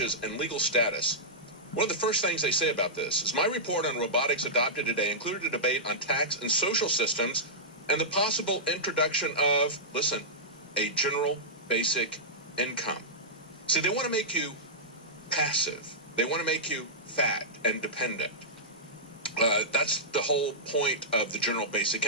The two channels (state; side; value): normal; both; correlation -0.12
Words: and legal status, one of the first things they say about this is my report on robotics adopted today included a debate on tax and social systems and the possible introduction of, listen, a general basic income. See, they want to make you passive. They want to make you fat and dependent. That's the whole point of the general basic